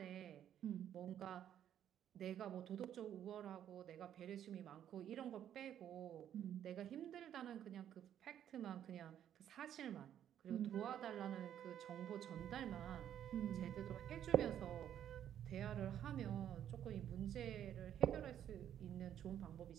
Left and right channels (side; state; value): left; quieter; 10.3 dB